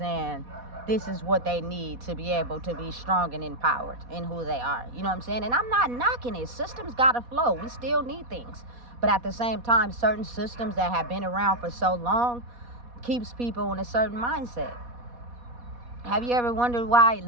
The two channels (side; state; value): left; late; 4.1 ms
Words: this is what they need to be able to be strong and empowered in who they are. You know what I'm saying? And I'm not knocking it. Systems got to flow. We still need things. But at the same time, certain systems that have been around for so long keeps people in a certain mindset. Have you ever wondered why